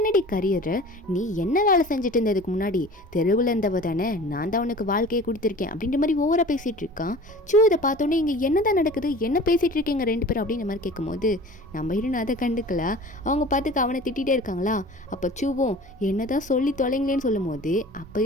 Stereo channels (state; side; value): normal; both; correlation 0.42